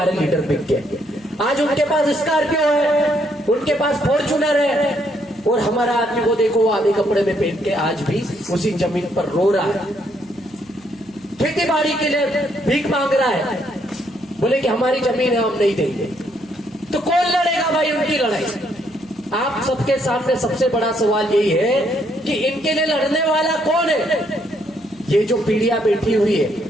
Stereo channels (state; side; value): noise; right; hum, 28 dB below the sound